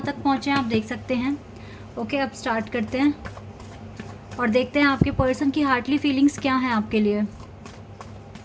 तक पहुँचे आप देख सकते हैं। ओके, अब स्टार्ट करते हैं और देखते हैं आपके पर्सन की हार्टली फीलिंग्स क्या हैं आपके लिए।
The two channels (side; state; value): both; identical; correlation 1.00